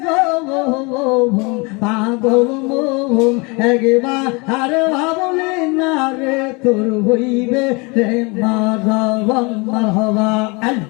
পাগল মোহন একবার আর ভাবলে না রে তোর হইবে রে মারবন মারহাবা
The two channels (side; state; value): right; quieter; 28.4 dB